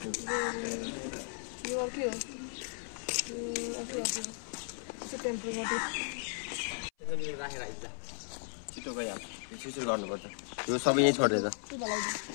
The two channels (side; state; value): right; silent; 54 dB below the other